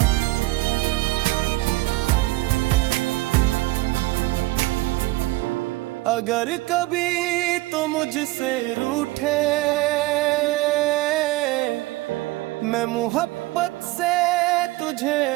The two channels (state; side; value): quieter; left; 19.8 dB